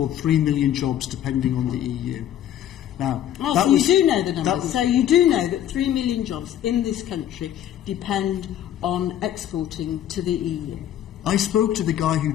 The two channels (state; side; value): quieter; right; 11.2 dB